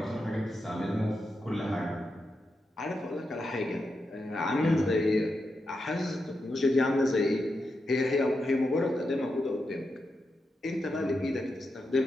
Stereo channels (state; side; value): normal; both; correlation 0.87